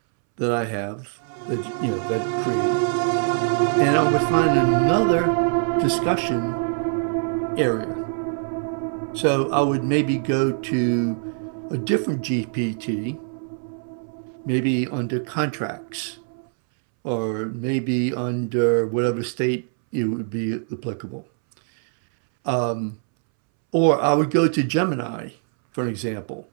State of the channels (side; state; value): left; silent; 63 dB below the other